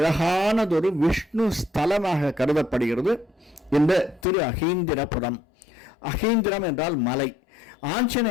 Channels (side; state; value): right; drops out; at 4.2 s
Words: விஷ்ணு ஸ்தலமாக கருதப்படுகிறது இந்த திரு அகீந்திரபுரம். அகீந்திரம் என்றால் மலை.